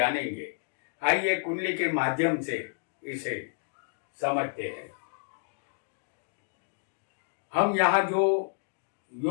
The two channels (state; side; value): silent; right; digital silence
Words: आइए कुंडली के माध्यम से इसे समझते हैं। हम यहाँ जो